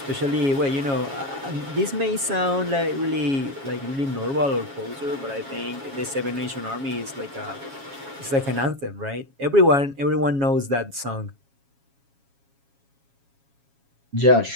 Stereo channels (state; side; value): late; left; 7.3 ms